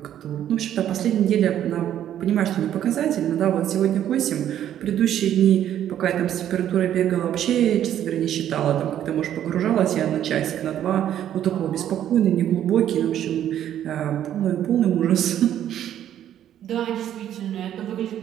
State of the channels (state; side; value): quieter; left; 10.9 dB